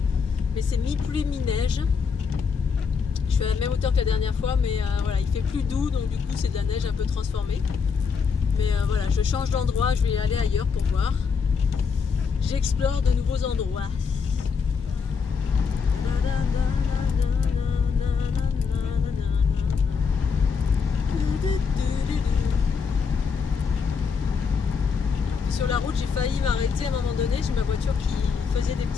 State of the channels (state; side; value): quieter; right; 5.7 dB